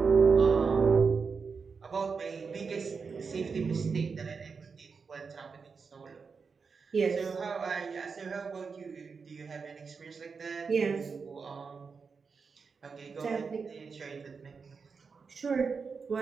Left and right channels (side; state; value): left; quieter; 5.2 dB